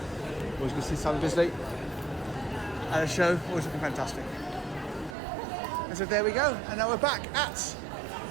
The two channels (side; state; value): left; drops out; at 5.2 s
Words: Always good to see Sam Bisley at a show, always looking fantastic. And so there we go, and now we're back at